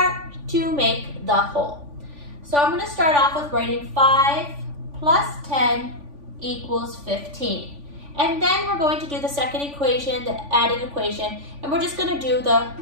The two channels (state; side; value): late; left; 3.5 ms